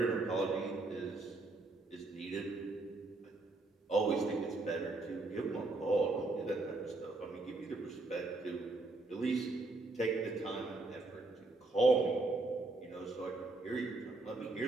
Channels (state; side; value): quieter; left; 3.1 dB